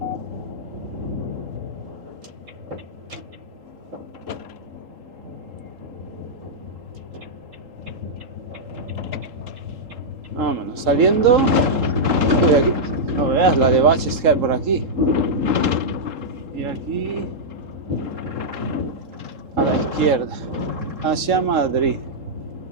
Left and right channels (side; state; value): left; late; 3.7 ms